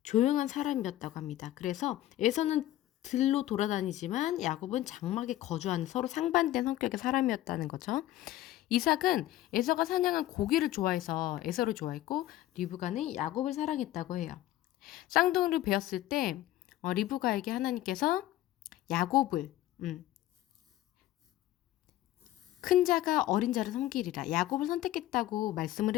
조용한 사람이었다고 합니다. 그래서 에서는 들로 돌아다니지만 야곱은 장막에 거주하는 서로 상반된 성격의 사람이었다는 거죠. 이삭은 에서가 사냥한 고기를 좋아해서 에서를 좋아했고 리브가는 야곱을 사랑했다고 해요. 쌍둥이를 베었을 때 리브가에게 하나님께서 야곱을 큰 자가 어린 자를 섬기리라 야곱을 선택했다고 말씀을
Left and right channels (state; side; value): quieter; right; 14.3 dB